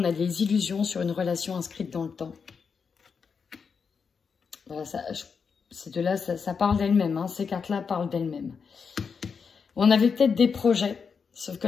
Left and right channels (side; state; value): right; quieter; 5.8 dB